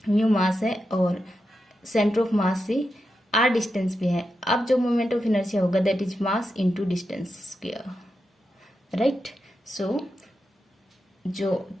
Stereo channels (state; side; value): normal; both; correlation 0.88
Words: mu मास है और centre of मास से are distance पे है. अब जो मोमेंट ऑफ इनर्शिया होगा that is mass into distance square. Right, so जो